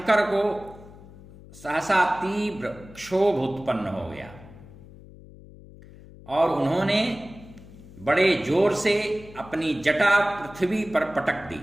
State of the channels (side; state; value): left; noise; hum, 20 dB below the sound